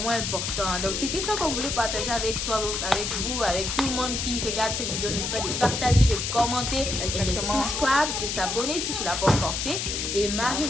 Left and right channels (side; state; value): left; noise; hiss, 2 dB below the sound